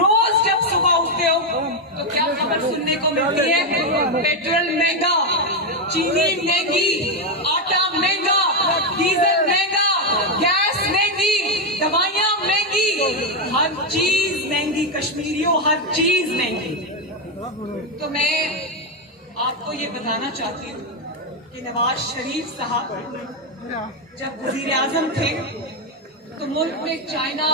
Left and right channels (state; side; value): normal; both; correlation 0.05